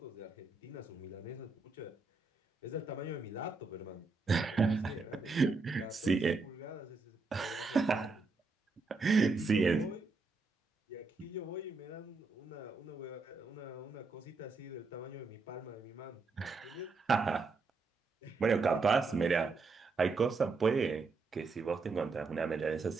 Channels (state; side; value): quieter; left; 4.0 dB